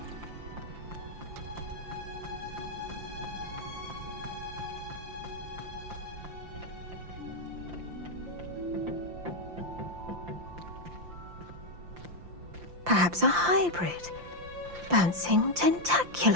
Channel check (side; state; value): left; late; 5.8 ms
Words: Perhaps a hybrid. Bouncing